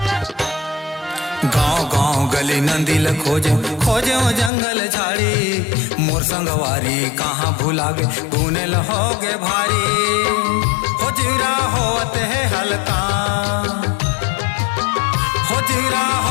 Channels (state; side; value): drops out; right; at 4.5 s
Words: गाँव गाँव गली नंदिल खोजो खोजो जंगल झाड़ी, मोर संगवारी कहाँ भुला गे तूने लहोगे भारी। हो जीरा होत है हलकान, हो जीरा